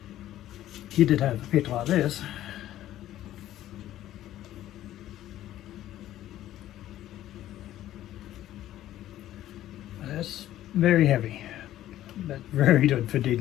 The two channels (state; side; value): quieter; right; 13.3 dB